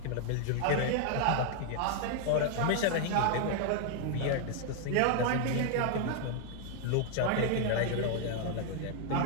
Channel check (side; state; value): both; different; correlation 0.00